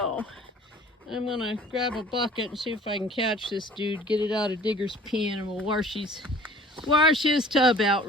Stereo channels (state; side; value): normal; both; correlation 0.49